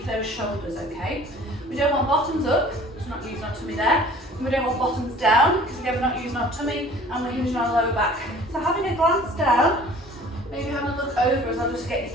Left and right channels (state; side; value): normal; both; correlation 0.49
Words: those shoulders, okay? We don't want bottoms up, because we're not using our tummy there. And we don't want bottoms down, because again, we're not using our tummy and we're hinging our lower back. So having a glance down, maybe having a look over as I'll just get your